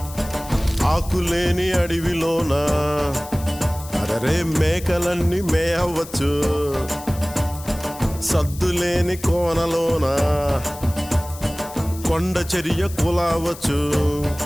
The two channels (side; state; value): left; noise; hiss, 16 dB below the sound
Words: ఆకులేని అడవిలోన అరే మేకలన్నీ మేయవచ్చు, సద్దులేని కోనలోన కొండ చర్య కులావచ్చు.